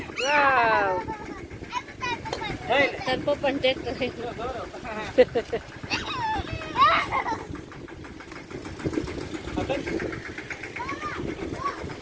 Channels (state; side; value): identical; both; correlation 1.00